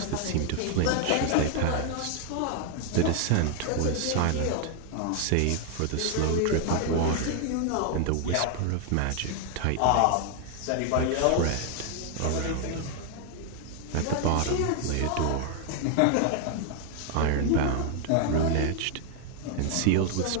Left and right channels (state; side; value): different; both; correlation 0.01